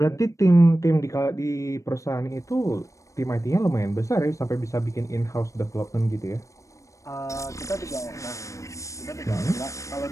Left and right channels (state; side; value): late; right; 0.15 ms